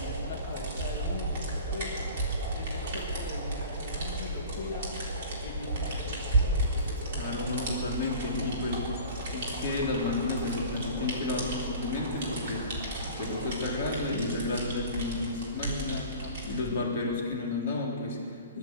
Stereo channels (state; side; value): inverted; both; correlation -0.41